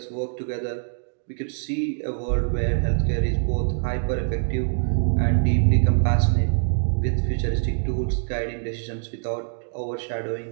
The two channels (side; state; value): left; silent; digital silence